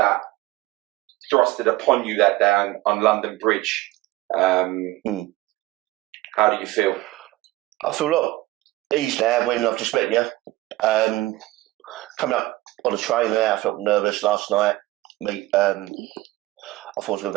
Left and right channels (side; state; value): left; quieter; 18.3 dB